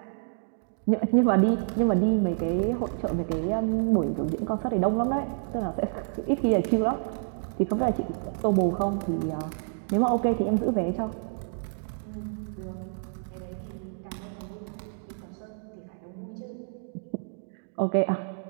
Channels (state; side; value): silent; left; digital silence